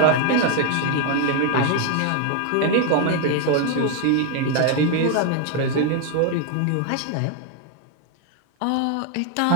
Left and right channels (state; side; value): different; both; correlation 0.01